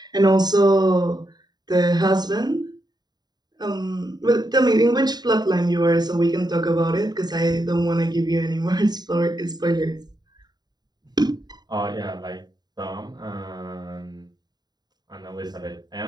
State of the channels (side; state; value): left; late; 0.20 ms